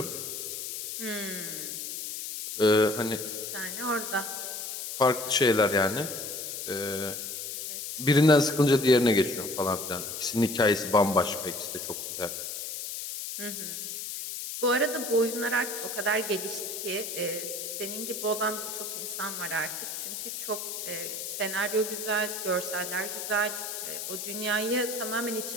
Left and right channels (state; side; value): noise; left; hiss, 6 dB below the sound